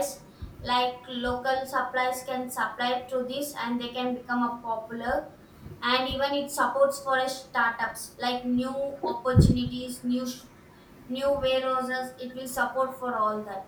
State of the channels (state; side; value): identical; both; correlation 1.00